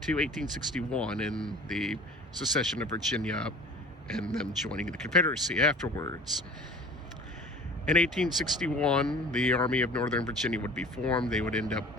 to 1861 and the secession of Virginia and them joining the Confederacy afterwards. In 1861, the Army of Northern Virginia would be formed. They would end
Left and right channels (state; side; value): normal; both; correlation 0.44